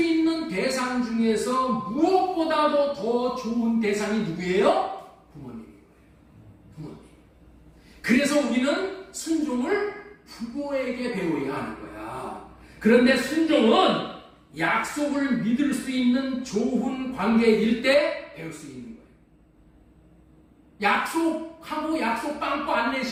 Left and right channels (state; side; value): identical; both; correlation 1.00